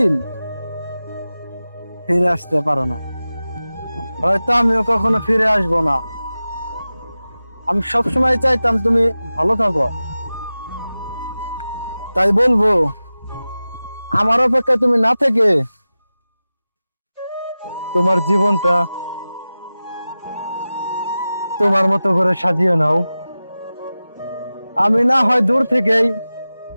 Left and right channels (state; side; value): inverted; both; correlation -0.95